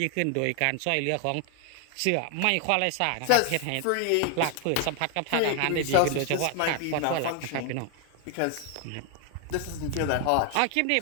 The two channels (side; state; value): both; different; correlation 0.00